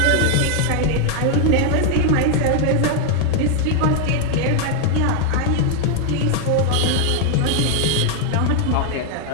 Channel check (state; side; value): different; both; correlation 0.00